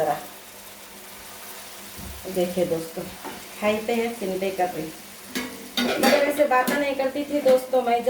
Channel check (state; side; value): identical; both; correlation 1.00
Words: देखिए दोस्तों, हाई पे है, सिम पे कर रही। मगर ऐसे बातें नहीं करती थी दोस्तों मैं,